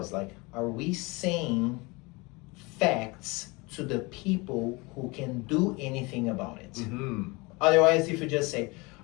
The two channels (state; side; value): quieter; right; 25.8 dB